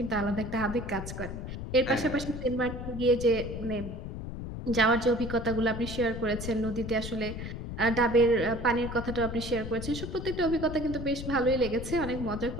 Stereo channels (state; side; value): noise; left; rumble, 7 dB below the sound